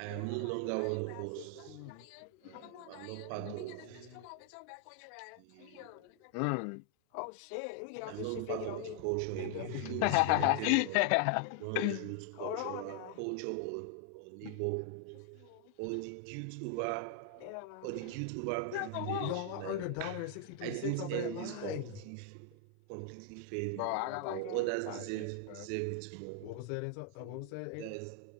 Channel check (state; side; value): different; both; correlation 0.00